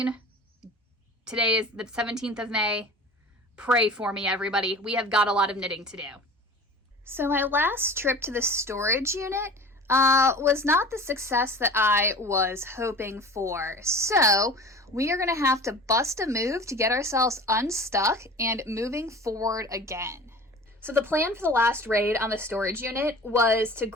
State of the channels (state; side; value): normal; both; correlation 0.39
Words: Today is the 17th of May. Pray for me, everybody. We have got a lot of knitting to do. So my last trip to the storage unit was not the success that I was hoping for. So we are going to have to bust a move to get ourselves unstuck and moving forward again. So the plan for the last raid on the storage unit was to